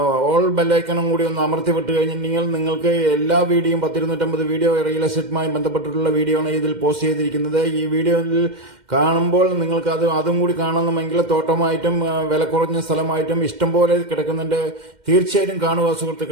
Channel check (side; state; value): left; late; 2.1 ms